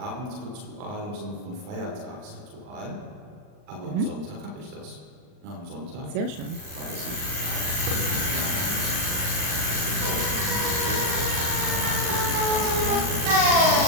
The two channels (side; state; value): left; late; 39 ms